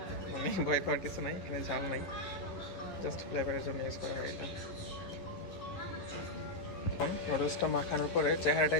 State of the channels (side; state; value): right; late; 11 ms